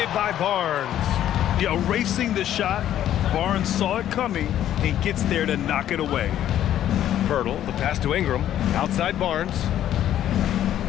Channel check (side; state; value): right; quieter; 11.5 dB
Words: by Barnes. Yeah, erasing the shot. Barnes saw it coming and gets there to knock it away. Pirtle, the pass to Ingram. Outside Barnes.